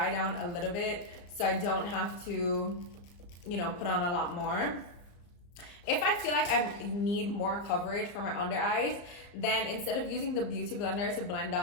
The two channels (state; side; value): late; right; 34 ms